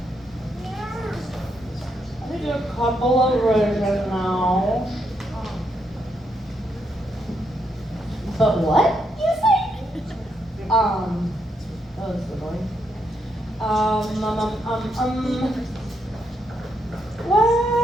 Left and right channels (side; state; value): both; normal; correlation 0.78